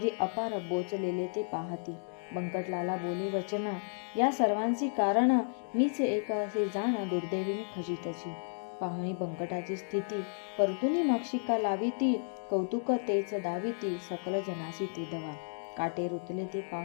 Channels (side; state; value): right; silent; digital silence